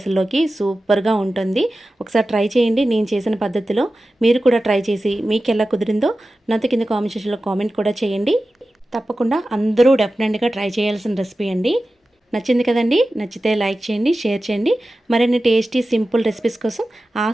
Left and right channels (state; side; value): normal; both; correlation 0.94